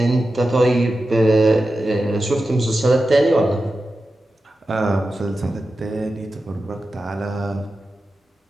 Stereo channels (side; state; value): both; normal; correlation 0.92